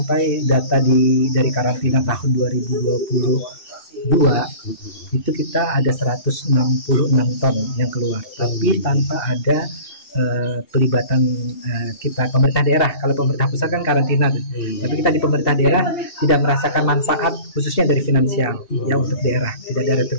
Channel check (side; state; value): right; late; 2.7 ms